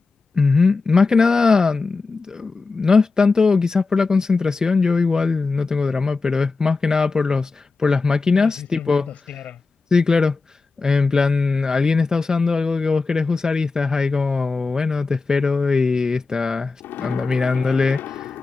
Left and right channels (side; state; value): right; quieter; 4.1 dB